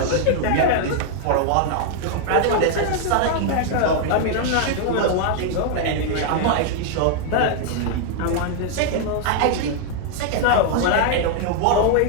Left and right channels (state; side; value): different; both; correlation 0.00